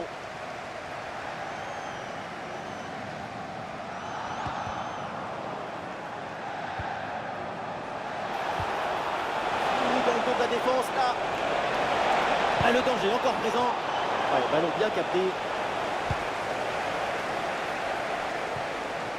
Ah, le danger encore présent. Ouais, ballon bien capté.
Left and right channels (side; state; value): both; identical; correlation 1.00